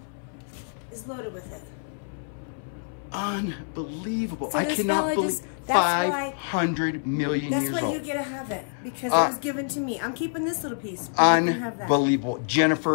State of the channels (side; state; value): right; silent; 60 dB below the other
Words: is loaded with it. Unbelievable. So I cannot believe 500 million years old. That's why you get to have it, because it was given to me. I'm keeping this little piece. You can have that. Unbelievable.